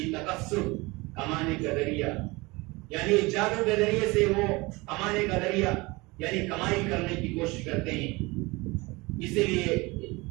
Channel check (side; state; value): left; quieter; 23.8 dB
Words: تکسب، کمانے کا ذریعہ، یعنی جادو کے ذریعے سے وہ کمانے کا ذریعہ یعنی کمائی کرنے کی کوشش کرتے ہیں۔ اسی لیے